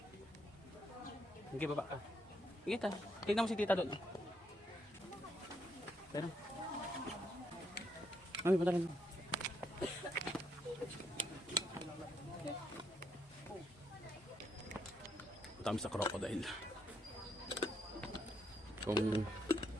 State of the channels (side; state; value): both; normal; correlation 0.75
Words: Sige, baba ka. Sige, ta. Tignan mo si tita doon. Pero. Mami, punta rin. Punta kami sa crocodile. Kung